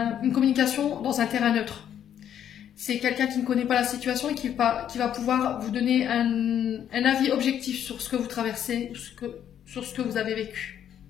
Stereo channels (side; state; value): right; quieter; 9.8 dB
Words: une communication dans un terrain neutre. C'est quelqu'un qui ne connaît pas la situation et qui va pouvoir vous donner un avis objectif sur ce que vous traversez, sur ce que vous avez vécu.